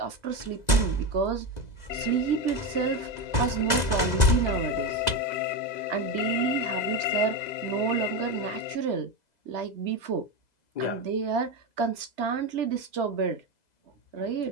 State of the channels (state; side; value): late; right; 2.0 ms